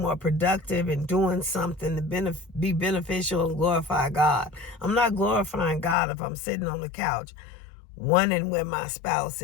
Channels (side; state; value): right; drops out; at 6.0 s